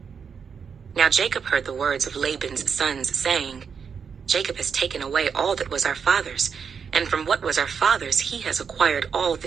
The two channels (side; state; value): left; quieter; 6.5 dB